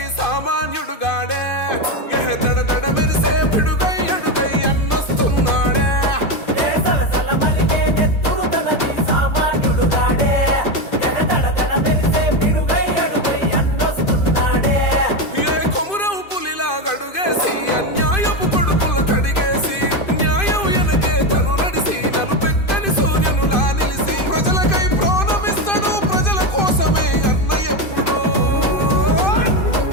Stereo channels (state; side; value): late; right; 2.5 ms